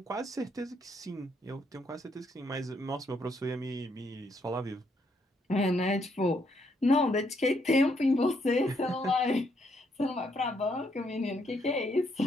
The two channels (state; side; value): normal; both; correlation 0.73